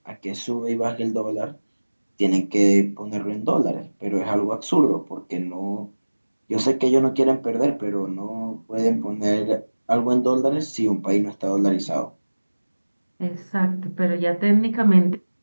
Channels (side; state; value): both; inverted; correlation -1.00